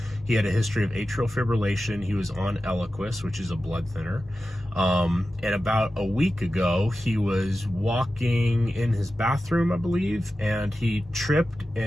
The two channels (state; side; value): normal; both; correlation 0.93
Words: He had a history of atrial fibrillation. He was on Eliquis, which is a blood thinner. And about a week ago, he was walking in his bathroom, I believe, and he tripped